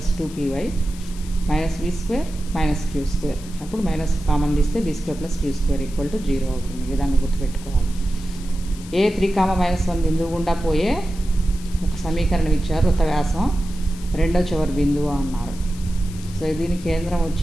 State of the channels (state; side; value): noise; left; hiss, 18 dB below the sound